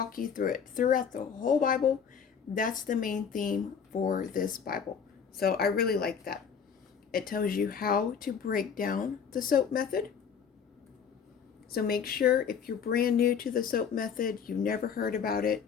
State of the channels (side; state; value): right; quieter; 7.0 dB